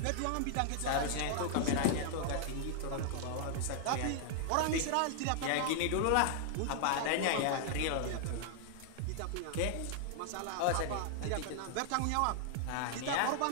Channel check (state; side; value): different; both; correlation 0.00